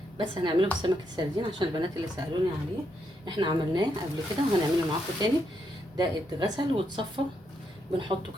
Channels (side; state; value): both; normal; correlation 0.79